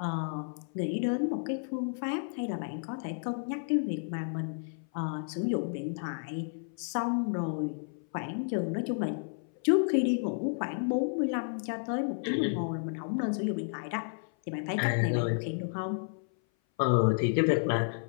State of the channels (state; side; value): silent; right; 56 dB below the other